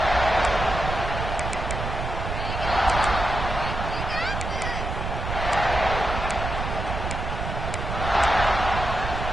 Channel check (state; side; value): noise; right; rumble, 4 dB below the sound